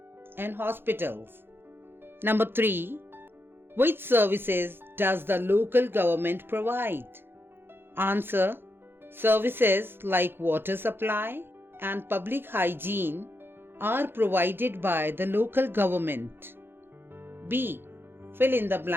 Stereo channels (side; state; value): left; late; 0.10 ms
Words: and hospitals. Number 3. Which services does the local government provide? Answer. Services like water supply and public hygiene are provided by the local government. B. Fill in the